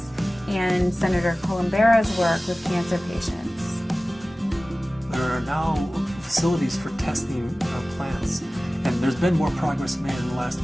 and Senator Columbera's work with cancer patients. There are now facilities for testing plants, and there's been more progress made in the last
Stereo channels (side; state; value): both; normal; correlation 0.97